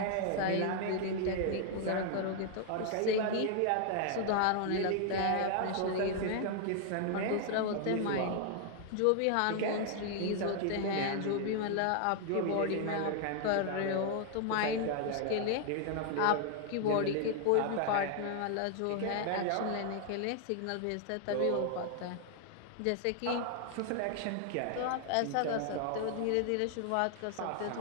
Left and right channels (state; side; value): different; both; correlation 0.00